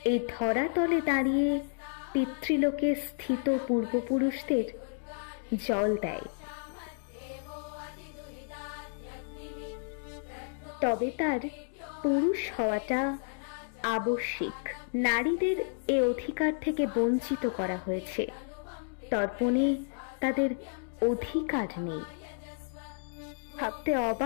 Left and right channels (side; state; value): right; silent; digital silence